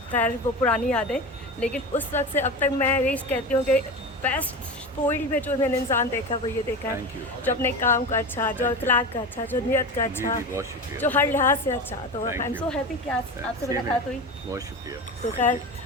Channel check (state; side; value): normal; both; correlation 0.26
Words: खैर वो पुरानी यादें, लेकिन उस वक्त से अब तक मैं यही कहती हूँ कि बेस्ट फील्ड में जो मैंने इंसान देखा वो ये देखा थैंक यू। है जो अपने काम का अच्छा, जो अखलाक का अच्छा, जो नियत का जी अच्छा, जी, बहुत शुक्रिया। जो हर लिहाज से अच्छा। तो I thank am you. So happy कि आज आपसे मुलाकात हुई। बहुत शुक्रिया। तो खैर